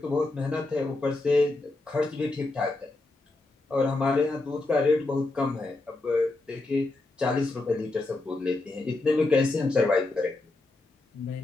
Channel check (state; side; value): quieter; right; 3.1 dB